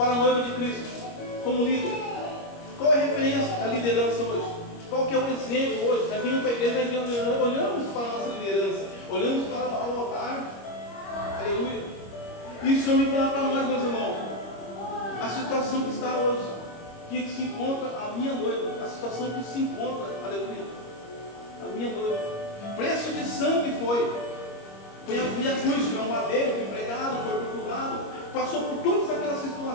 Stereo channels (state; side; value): late; right; 25 ms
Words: a noiva de Cristo, como líder? Qual é a referência da liderança hoje? Qual que é o exemplo hoje? Nós vimos para a igreja, nós olhamos para a nossa liderança, olhamos para o altar, aleluia. Isso eu me falar para nós, meus irmãos, a situação que está hoje, que se encontra a minha noiva, a situação que se encontra, aleluia, a minha noiva, preço de sangue foi a cruz, foi um madeiro, foi pregado, foi torturado, passou por todas aquelas